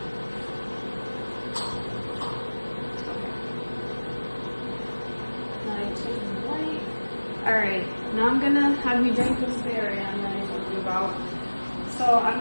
Alright, now I'm going to have you drink this barium that I told you about. So I'm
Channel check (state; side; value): inverted; both; correlation -1.00